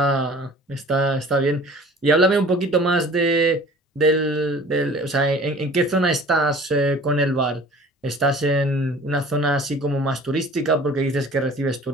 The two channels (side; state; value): both; normal; correlation 0.47